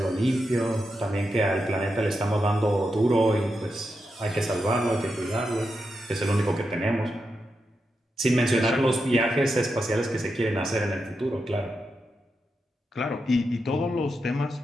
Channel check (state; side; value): normal; both; correlation 0.86